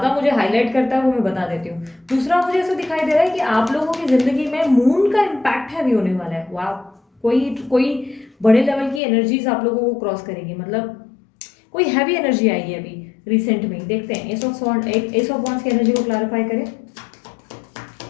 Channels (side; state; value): right; drops out; at 9.0 s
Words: मुझे हाईलाइट करता है वो मैं बता देती हूँ। दूसरा, मुझे ऐसा दिखाई दे रहा है कि आप लोगों की जिंदगी में मून का इम्पैक्ट हैवी होने वाला है। वाह, कोई बड़े लेवल की एनर्जीज आप लोगों को क्रॉस करेगी, मतलब कोई हैवी एनर्जी आएगी अभी रिसेंट में। देखते हैं एस ऑफ वॉन्ड्स की एनर्जी को क्लैरिफाई करें।